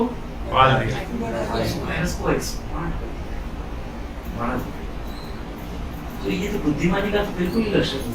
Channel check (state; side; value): identical; both; correlation 1.00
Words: पाल दिया। वायरस को एक्सपांड बढ़ा दिया। तो ये तो बुद्धिमानी का तो बिल्कुल ही लक्षण नहीं,